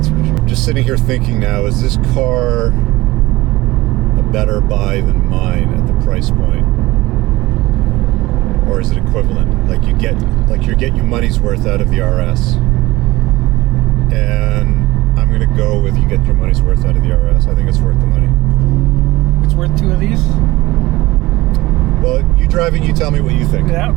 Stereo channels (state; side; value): quieter; left; 19.2 dB